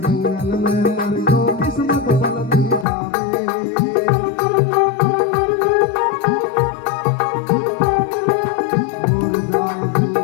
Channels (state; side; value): drops out; right; at 2.9 s